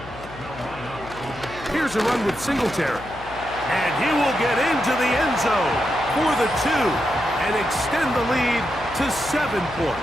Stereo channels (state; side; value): noise; left; hum, 17 dB below the sound